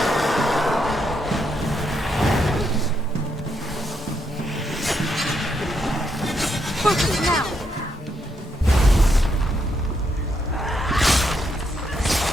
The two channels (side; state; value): both; normal; correlation 0.78